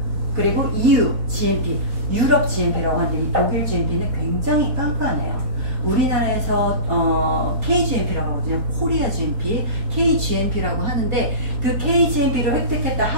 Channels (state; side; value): late; left; 4.1 ms